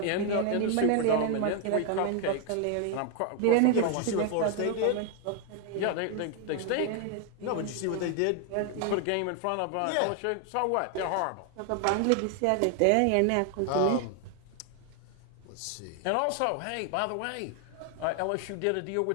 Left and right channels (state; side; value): different; both; correlation 0.00